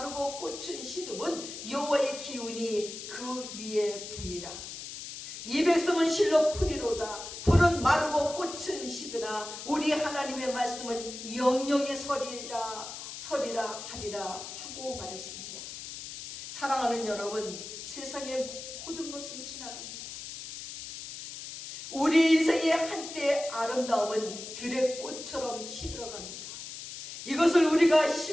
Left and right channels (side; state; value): left; noise; hiss, 10 dB below the sound